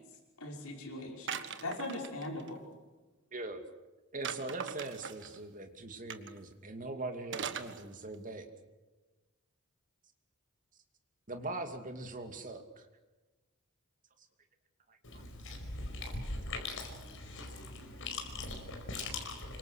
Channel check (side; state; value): both; normal; correlation 0.13